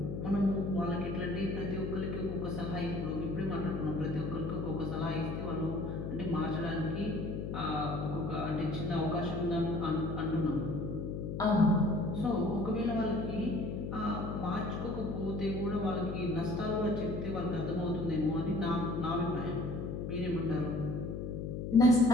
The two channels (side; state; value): left; noise; hum, 4 dB below the sound